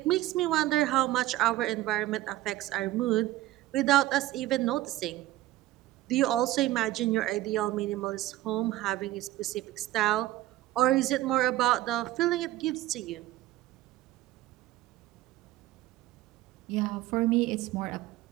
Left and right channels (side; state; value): left; quieter; 15.9 dB